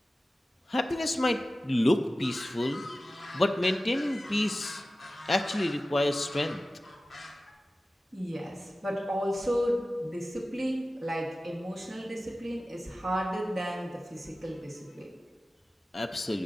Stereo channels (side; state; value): both; normal; correlation 0.96